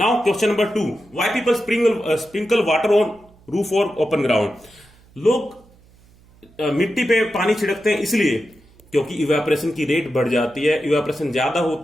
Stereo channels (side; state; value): right; noise; hum, 28 dB below the sound